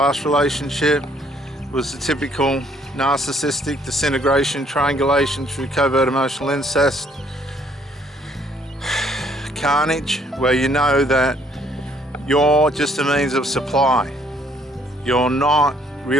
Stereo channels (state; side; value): normal; both; correlation 0.64